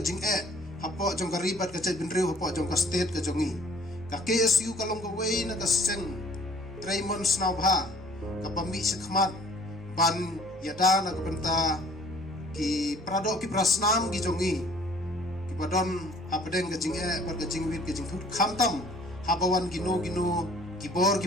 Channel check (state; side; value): normal; both; correlation 0.54